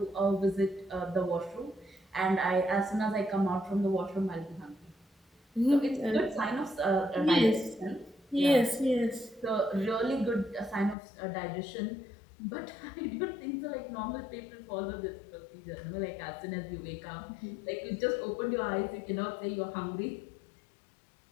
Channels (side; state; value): right; drops out; at 11.0 s